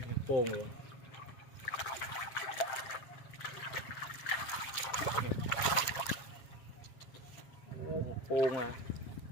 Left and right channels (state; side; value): late; right; 7.6 ms